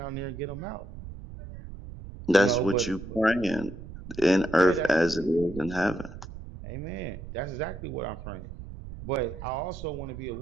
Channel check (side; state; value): right; noise; rumble, 12 dB below the sound